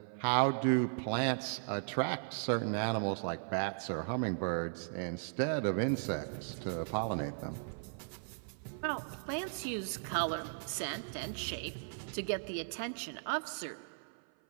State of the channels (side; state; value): left; silent; 53 dB below the other